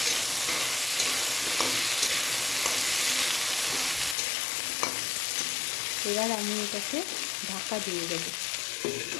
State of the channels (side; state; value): right; drops out; at 4.2 s